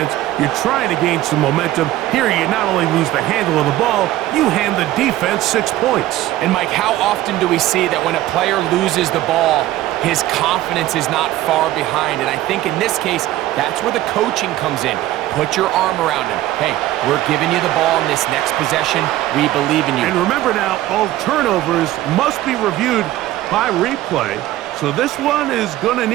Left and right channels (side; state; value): left; quieter; 15.0 dB